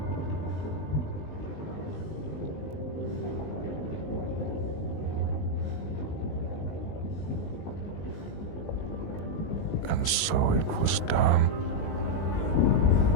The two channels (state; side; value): late; right; 19 ms